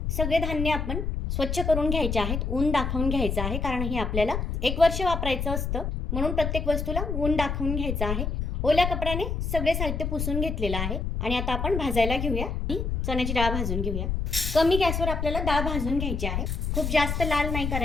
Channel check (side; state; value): left; noise; rumble, 2 dB below the sound